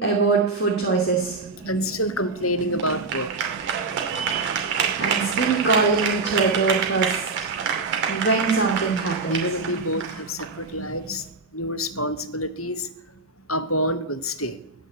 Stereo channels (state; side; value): quieter; left; 3.6 dB